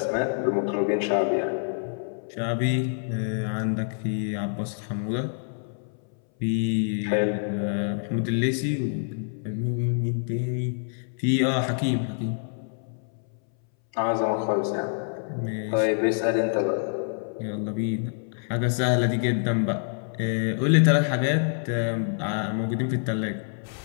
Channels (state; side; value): silent; right; 61 dB below the other